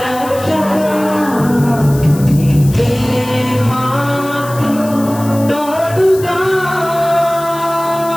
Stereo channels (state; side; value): noise; left; hiss, 16 dB below the sound